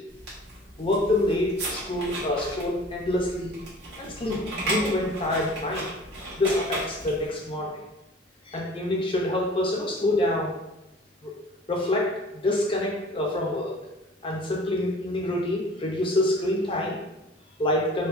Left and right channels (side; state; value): both; normal; correlation 0.45